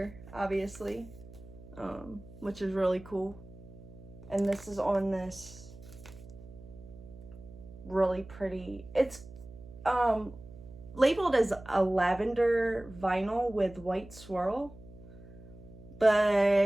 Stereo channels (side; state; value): right; noise; hum, 17 dB below the sound